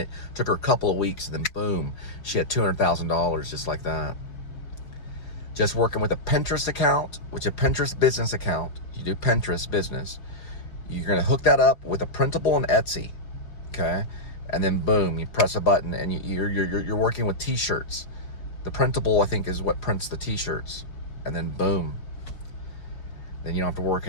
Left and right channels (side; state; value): right; late; 5.1 ms